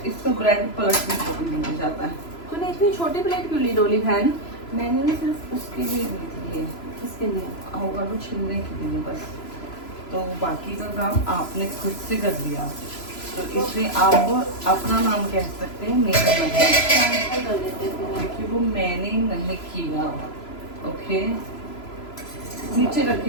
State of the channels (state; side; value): late; right; 3.0 ms